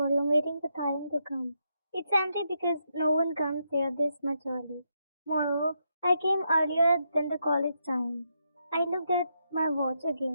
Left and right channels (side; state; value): both; inverted; correlation -0.81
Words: waiting for time to come. It's empty because no one comes here this much early. Moreover, I came earlier than the college time. I looked at my watch